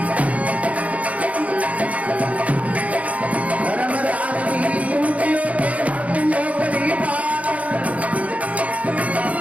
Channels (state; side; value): late; left; 0.067 ms